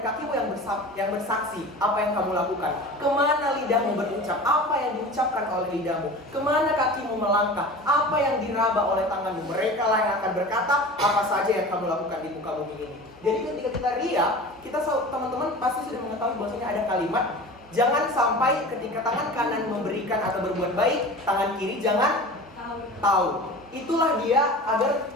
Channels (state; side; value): normal; both; correlation 0.36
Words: yang bersaksi apa yang kamu lakukan. Kemana lidahmu berucap, apa yang diucapkan oleh lidahmu. Kemana kakimu melangkah, apa yang diraba oleh tanganmu. Mereka lah yang akan berkata apa saja yang kamu lakukan di muka bumi ini. Jadi ketika kita ria, kita teman-teman pasti sudah mengetahui bahwasanya ada kalimat, jangan sampai ketika tangan kanan memberikan atau berbuat baik, tangan kiri jangan tahu. Itulah dia agar